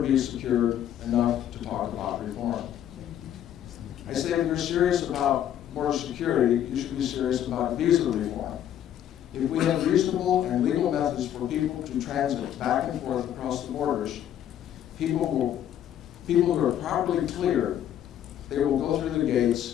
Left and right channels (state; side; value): quieter; right; 10.7 dB